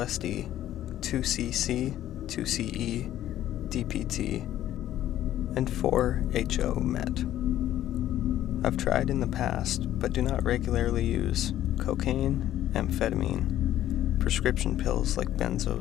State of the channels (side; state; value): right; quieter; 12.6 dB